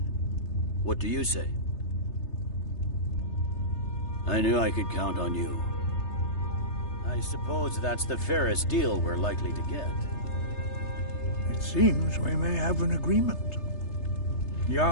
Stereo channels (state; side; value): late; right; 3.3 ms